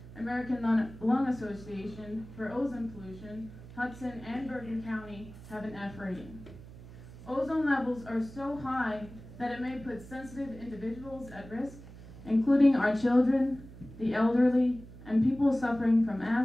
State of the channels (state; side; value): noise; right; hum, 17 dB below the sound